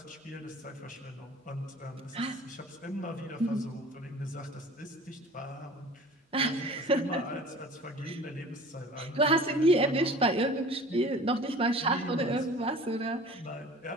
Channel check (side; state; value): both; normal; correlation 0.44